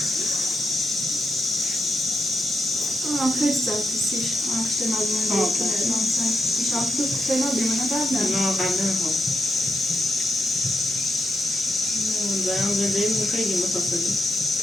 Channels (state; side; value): normal; both; correlation 0.84